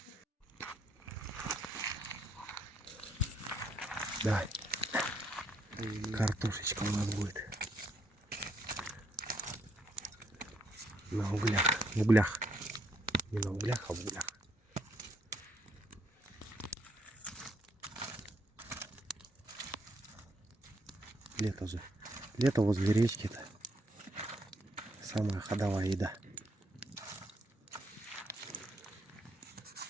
Давай. Картошечка у нас будет. На углях. В углях. Не на углях, а в углях. лето же. Лето возле речки-то. Самая ходовая еда.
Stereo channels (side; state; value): both; normal; correlation 0.72